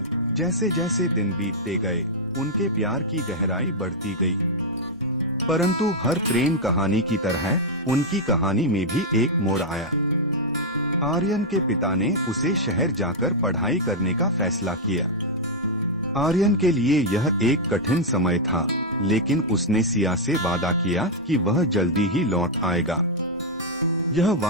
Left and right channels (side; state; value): both; normal; correlation -0.04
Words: जैसे जैसे दिन बीतते गए उनके प्यार की गहराई बढ़ती गई, परंतु हर प्रेम कहानी की तरह उनकी कहानी में भी एक मोड़ आया। आर्यन के पिता ने उसे शहर जाकर पढ़ाई करने का फैसला किया। आर्यन के लिए यह एक कठिन समय था, लेकिन उसने सिया से वादा किया कि वह जल्दी ही लौट आएगा। यह